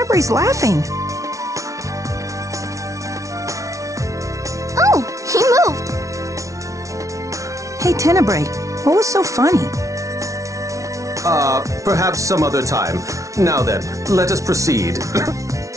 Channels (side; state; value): left; late; 0.15 ms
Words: laughing. Oh, he moved. Hey, Tenebrae, what was so funny? Perhaps some other time. Now then, let us proceed.